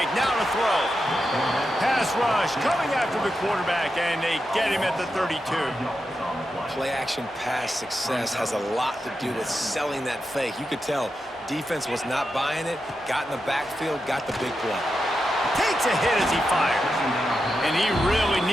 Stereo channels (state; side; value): normal; both; correlation 0.88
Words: now to throw. Pass rush, coming after the quarterback, and they get him at the 32. Play-action pass success has a lot to do with selling that fake. You could tell defense was not buying it, got in the backfield, got the big play. Takes a hit as he fires. And he really